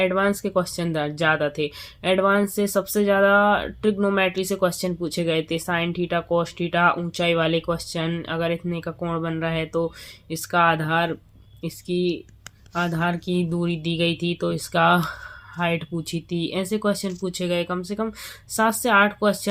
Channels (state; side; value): identical; both; correlation 1.00